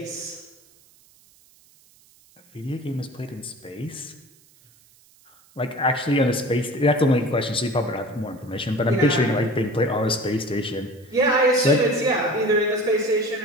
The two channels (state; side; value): noise; right; hiss, 30 dB below the sound